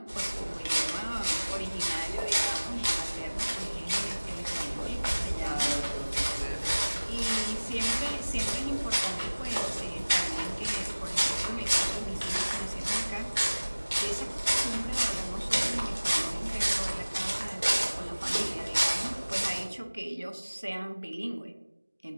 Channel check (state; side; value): inverted; both; correlation -1.00